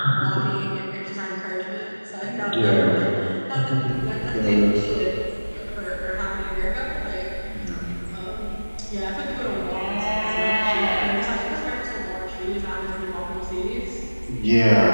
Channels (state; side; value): inverted; both; correlation -1.00